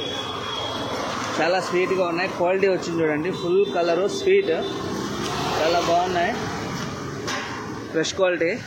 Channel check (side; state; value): both; identical; correlation 1.00